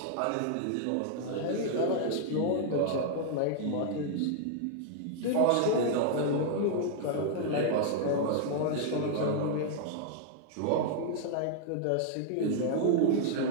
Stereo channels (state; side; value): different; both; correlation 0.00